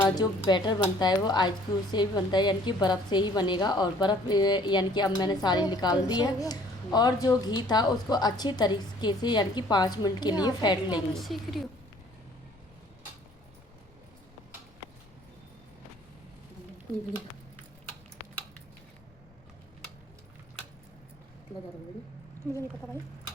जो बैटर बनता है वो आइस क्यूब से ही बनता है, यानी कि बर्फ़ से ही बनेगा। और बर्फ़ यानी कि अब मैंने सारी निकाल दी है, और जो घी था उसको अच्छी तरीके से यानी कि 5 मिनट के लिए फेंट लेंगे। सीख रही हूँ। मुझे नहीं पता भाई।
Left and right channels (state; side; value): noise; left; rumble, 28 dB below the sound